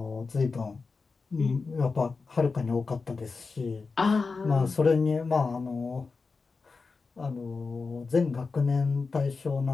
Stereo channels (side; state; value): right; quieter; 4.4 dB